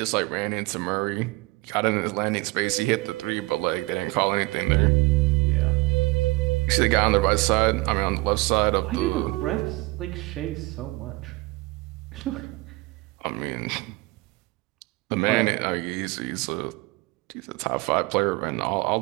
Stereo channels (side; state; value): left; quieter; 22.6 dB